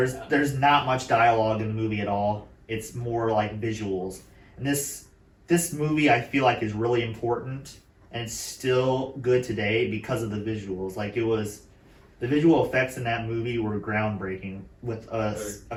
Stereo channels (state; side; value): identical; both; correlation 1.00